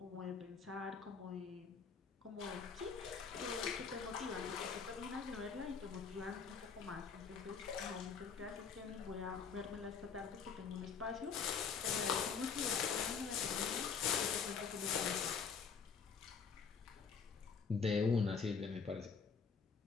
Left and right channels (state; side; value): quieter; right; 5.9 dB